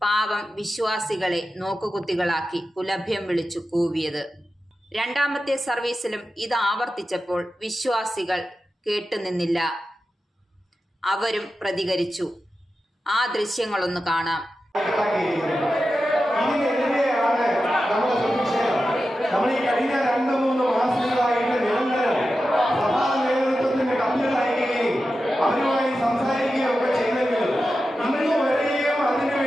പാവം വിശ്വാസികളെ നോക്കുകുത്തികളാക്കി പുലഭ്യം വിളിച്ചു കൂവിയത്. രണ്ടാമത്തെ സർവീസിലും ഇത് ആവർത്തിച്ചപ്പോൾ വിശ്വാസികൾ കേട്ടുനിന്നില്ല. അവരും പ്രതികരിച്ചു. ആ ദൃശ്യങ്ങളൊന്ന് കാണാം. സംസാരിക്കുകയൊക്കെ ചെയ്തെങ്കിലും ഇന്ന് വരെയും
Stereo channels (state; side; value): normal; both; correlation 0.92